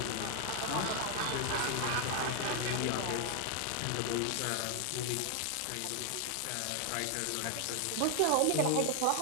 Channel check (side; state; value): both; different; correlation 0.00